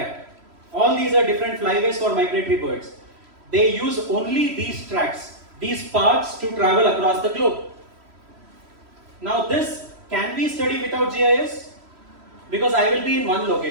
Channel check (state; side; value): late; left; 3.1 ms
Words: All these are different flyways for migratory birds. They use only these tracks, these paths to travel across the globe. Now this can be studied without GIS, because I will be in one